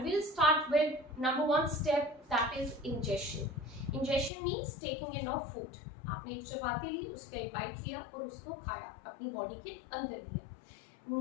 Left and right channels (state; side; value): drops out; right; at 4.3 s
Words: we'll start with number 1 step, that is ingestion. Ingestion means taking in of food. आपने एक चपाती ली, उसका एक बाइट लिया और उसको खाया, अपनी बॉडी के अंदर लिया.